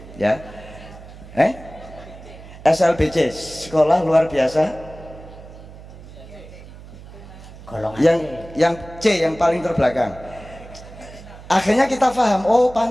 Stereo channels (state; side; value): noise; right; hum, 17 dB below the sound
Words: ya, SLBC, sekolah luar biasa. Yang C, yang paling terbelakang. Akhirnya kita paham, oh